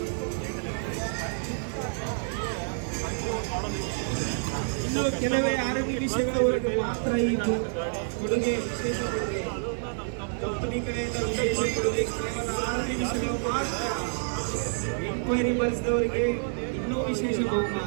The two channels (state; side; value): silent; left; digital silence